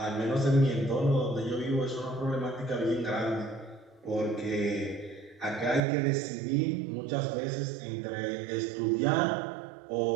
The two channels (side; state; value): left; drops out; at 5.8 s